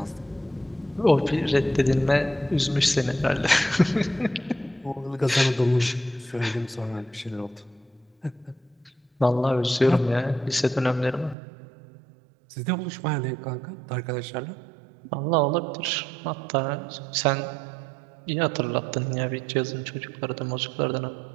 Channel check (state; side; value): drops out; left; at 11.4 s